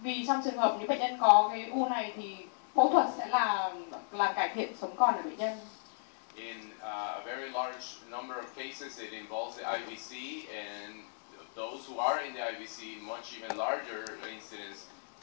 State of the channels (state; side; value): silent; right; digital silence